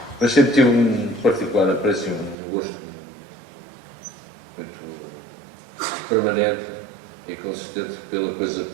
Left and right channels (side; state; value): left; drops out; at 2.4 s